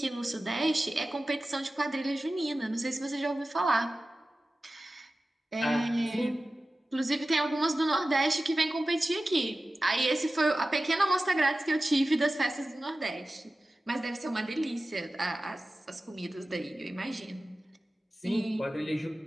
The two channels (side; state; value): both; normal; correlation 0.95